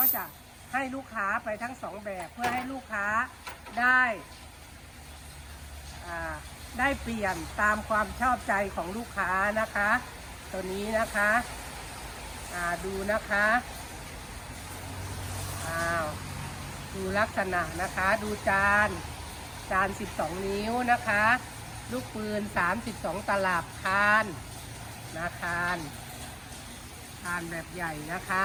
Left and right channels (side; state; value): both; identical; correlation 1.00